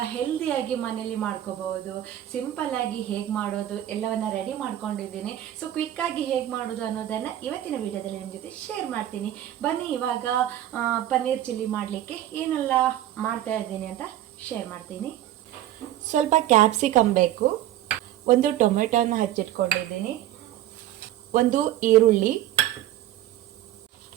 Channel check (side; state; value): left; quieter; 12.8 dB